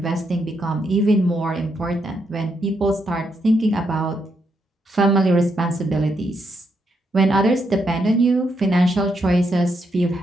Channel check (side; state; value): both; normal; correlation 0.79